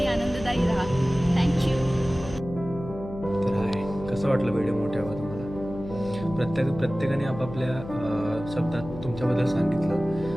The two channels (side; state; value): left; noise; hum, 12 dB below the sound